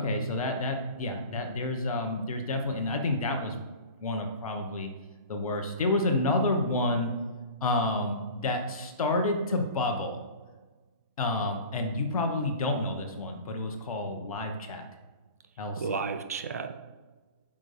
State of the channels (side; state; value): both; inverted; correlation -0.38